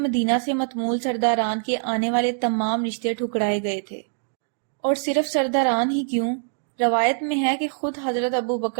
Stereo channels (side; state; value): left; silent; digital silence